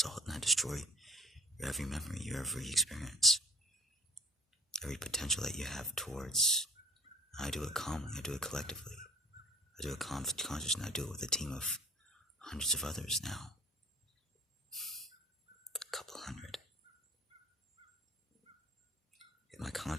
and I destroy your every memory, your every experience, every potential that you have towards. I do it calmly, I do it collectively, I do it conscious, and I do it with a team of hundreds of others now, a couple hundred. In my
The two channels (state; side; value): normal; both; correlation 0.49